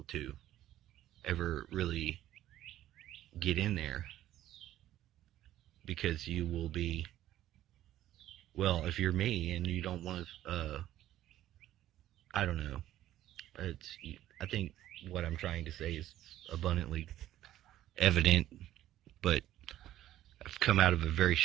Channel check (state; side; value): quieter; left; 13.2 dB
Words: to ever really get in there, because you will be, well, if you're me and you don't want to, I don't know. It's I think what I'm trying to say is abundantly evident, but I've come out of a very